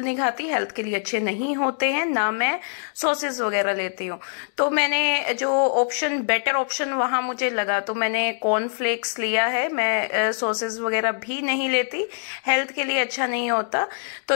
नहीं खाती, हेल्थ के लिए अच्छे नहीं होते हैं, ना मैं सॉसेस वगैरह लेती हूँ। तो मैंने जो ऑप्शन, बेटर ऑप्शन वहां मुझे लगा, तो मैंने कॉर्नफ्लेक्स लिया है। मैं सॉसेस वगैरह भी नहीं लेती, हेल्थ के लिए अच्छा नहीं होता। तो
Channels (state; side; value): silent; right; digital silence